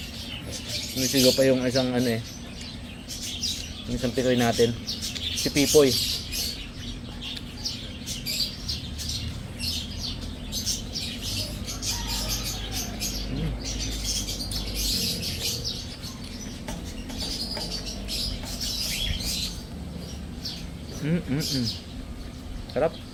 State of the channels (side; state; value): both; identical; correlation 1.00